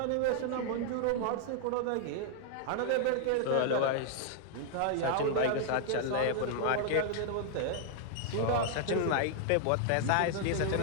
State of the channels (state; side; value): different; both; correlation -0.01